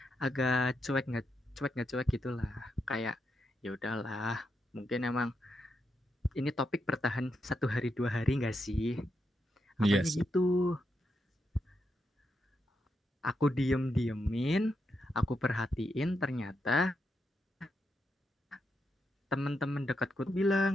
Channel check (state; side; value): normal; both; correlation 0.83